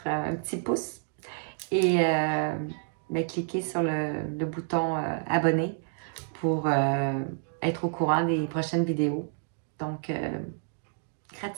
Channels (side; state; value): left; silent; digital silence